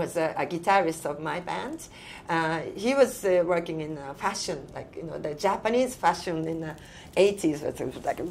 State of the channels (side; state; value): both; identical; correlation 1.00